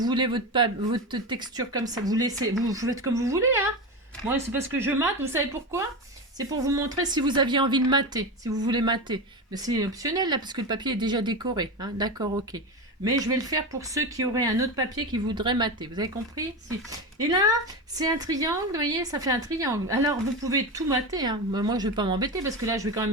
votre texture comme ça, vous faites comme vous voulez. Hein. Moi, c'est parce que je mate. Vous savez pourquoi? C'est pour vous montrer si vous aviez envie de mater, si vous voulez mater. Mais c'est optionnel là, parce que le papier est déjà décoré. Hein. D'accord, ok. Mais je vais le faire pour ceux qui auraient un autre papier qui voudraient mater. Vous avez compris? Si. Et là, c'est un triangle, vous voyez, ça fait un triangle. Alors, vous pouvez tout mater. Hein. Moi, je ne vais pas m'embêter parce que là, je vais quand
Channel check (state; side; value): normal; both; correlation 0.20